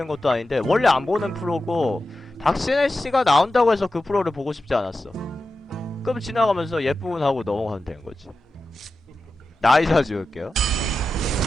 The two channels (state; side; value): normal; both; correlation 0.91